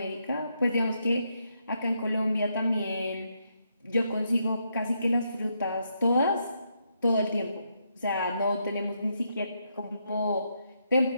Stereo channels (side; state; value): both; inverted; correlation -0.79